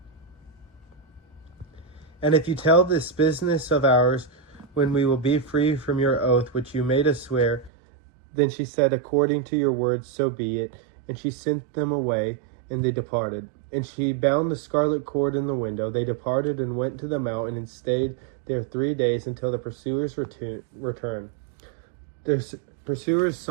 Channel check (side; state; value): left; drops out; at 7.7 s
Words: And if you tell this business of ours, when we will be free from your oath which you made us swear. Then she said, According to your words, so be it. And she sent them away, and they departed. And she bound the scarlet cord in the window. They departed and went to the mountain, and stayed there 3 days, until the pursuers returned. Their pursuers